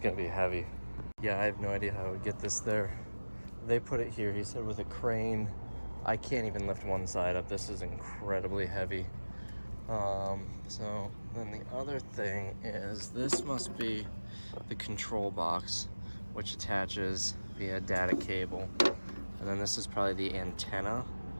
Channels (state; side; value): inverted; both; correlation -1.00